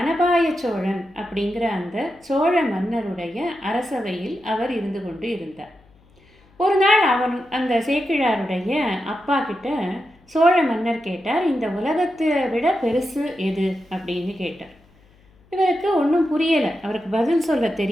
சோழன் அப்படிங்கிற அந்த சோழ மன்னருடைய அரசவையில் அவர் இருந்து கொண்டு இருந்தார். ஒரு நாள் அந்த சேக்கிழாருடைய அப்பா கிட்ட சோழ மன்னர் கேட்டார், இந்த உலகத்தை விட பெருசு எது அப்படின்னு கேட்டார். இவருக்கு ஒன்றும் புரியலை, அவருக்கு பதில் சொல்ல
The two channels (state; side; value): noise; left; hum, 30 dB below the sound